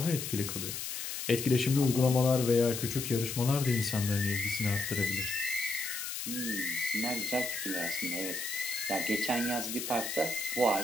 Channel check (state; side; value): noise; left; hiss, 5 dB below the sound